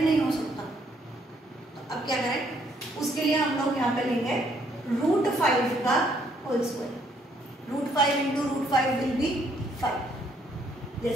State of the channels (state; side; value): normal; both; correlation 0.68